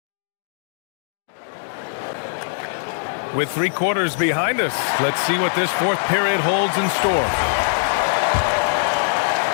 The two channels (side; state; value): right; silent; digital silence